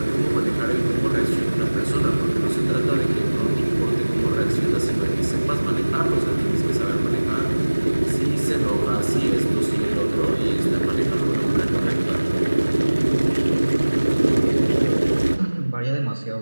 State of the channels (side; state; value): both; inverted; correlation -1.00